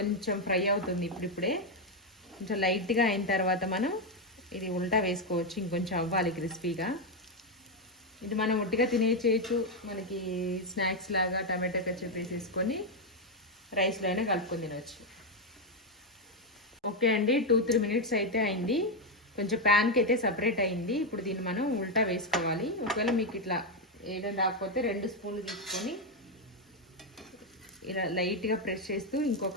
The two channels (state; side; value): normal; both; correlation 0.04